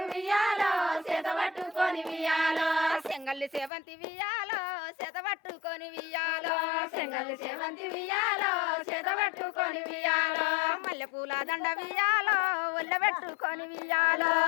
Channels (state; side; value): drops out; right; at 3.7 s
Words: వియ్యాలో చేత పట్టుకొని వియ్యాలో సెంగల్లి సేవంతి వియ్యాలో చేత పట్టుకొని వియ్యాలో సెంగల్లి సేవంతి వియ్యాలో చేత పట్టుకొని వియ్యాలో మల్లెపూల దండ వియ్యాలో ఒళ్ళబెట్టుకొని వియ్యాలో